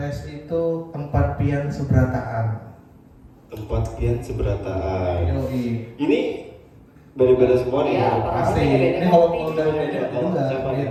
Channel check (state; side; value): identical; both; correlation 1.00